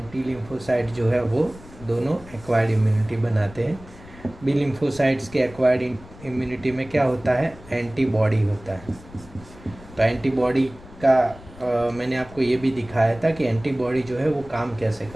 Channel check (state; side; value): noise; left; rumble, 19 dB below the sound